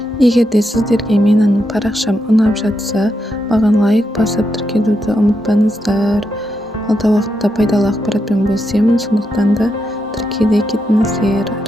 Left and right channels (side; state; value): both; normal; correlation 0.83